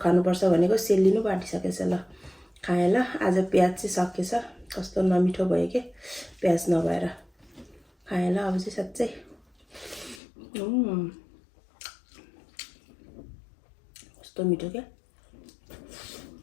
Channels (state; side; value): drops out; right; at 10.2 s